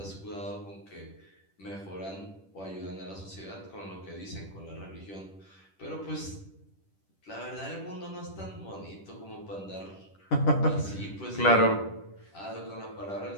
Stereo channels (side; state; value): right; late; 10 ms